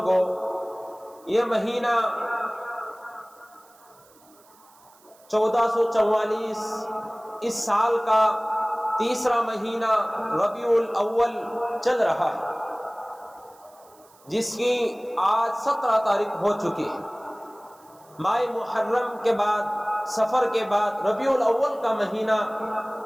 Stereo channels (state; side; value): noise; right; hiss, 28 dB below the sound